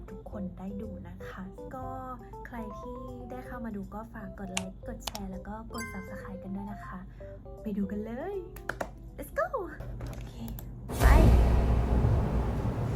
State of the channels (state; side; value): identical; both; correlation 1.00